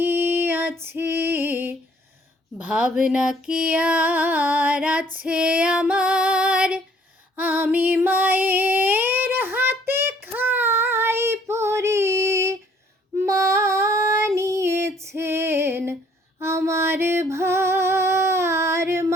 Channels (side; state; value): both; normal; correlation 0.60